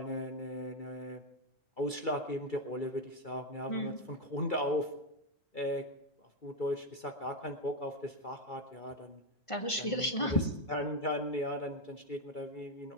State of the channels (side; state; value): right; late; 2.3 ms